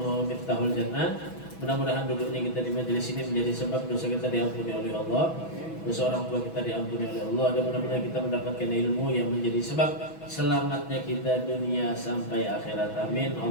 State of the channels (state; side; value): late; right; 6.1 ms